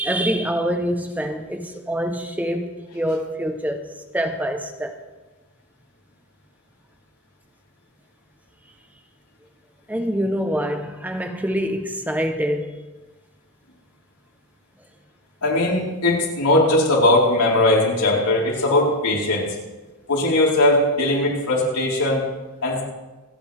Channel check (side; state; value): both; normal; correlation 0.13